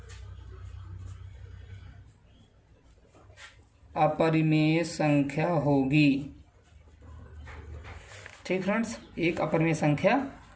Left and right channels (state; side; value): identical; both; correlation 1.00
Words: अपरिमेय संख्या होगी। ठीक फ्रेंड्स, एक अपरिमेय संख्या